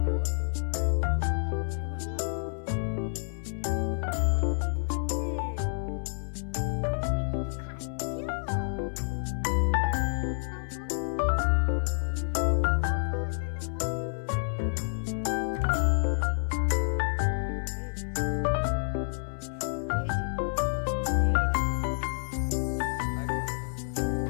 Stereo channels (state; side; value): silent; right; 58 dB below the other